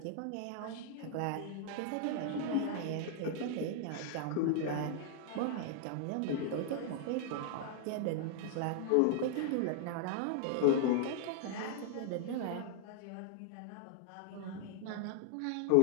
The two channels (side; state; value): both; different; correlation 0.00